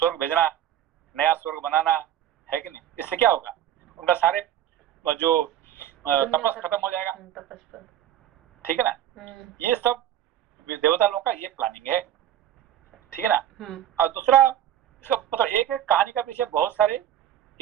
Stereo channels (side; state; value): left; quieter; 11.0 dB